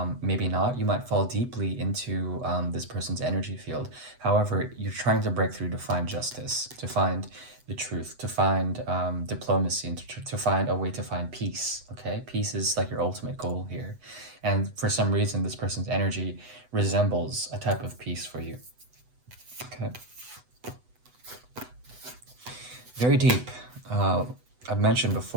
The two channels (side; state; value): left; late; 8.0 ms